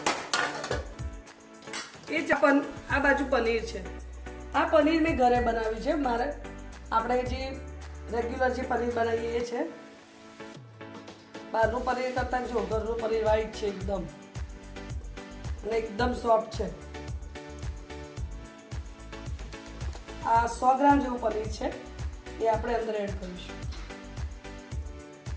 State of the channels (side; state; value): both; identical; correlation 1.00